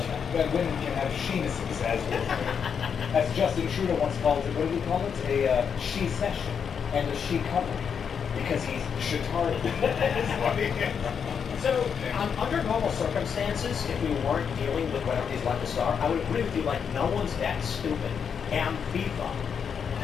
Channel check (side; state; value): right; quieter; 7.0 dB